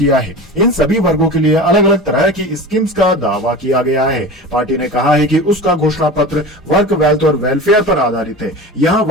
है। इन सभी वर्गों के लिए अलग अलग तरह की स्कीम्स का दावा किया गया है। पार्टी ने कहा है कि उसका घोषणा पत्र वर्क, वेल्थ और वेलफेयर पर आधारित है। यहाँ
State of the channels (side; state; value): both; normal; correlation 0.33